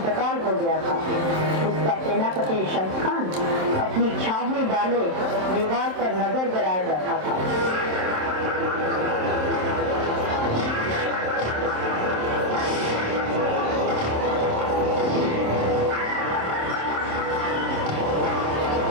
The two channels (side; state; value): left; late; 27 ms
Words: हो गया था। उसका सेनापति शम्स खान अपनी छावनी डाले दीवार पर नजर गड़ाए बैठा था।